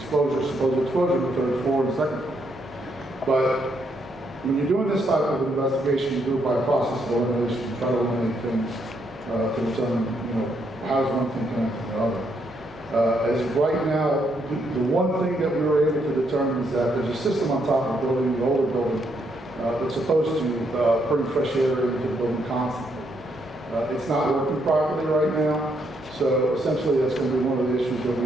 supposed exposure to the 3rd floor and 2nd floor. But when you're doing this type of investigation, you do it by a process of elimination. You try to eliminate things to determine, how does one thing connect to the other. As of right now, the one thing that we were able to determine is that there's a system on top of the building, the older building, that's supposed to bring fresh air into the building constantly. It's not working properly right now, so essentially that's going to be one of the issues that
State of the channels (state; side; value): normal; both; correlation 0.75